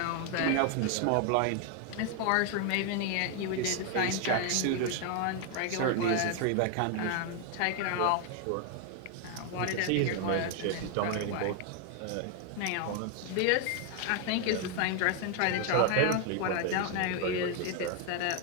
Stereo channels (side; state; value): both; different; correlation 0.01